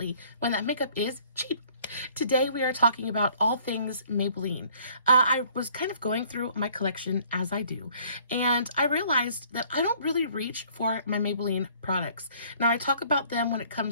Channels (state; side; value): inverted; both; correlation -0.58